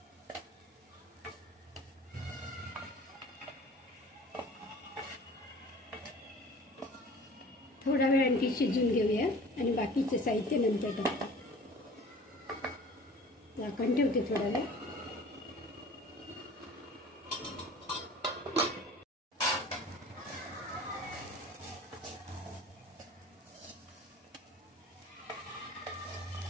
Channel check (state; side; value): normal; both; correlation 0.45